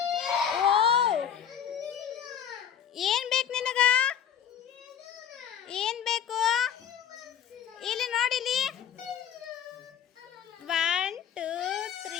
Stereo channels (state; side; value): quieter; right; 8.9 dB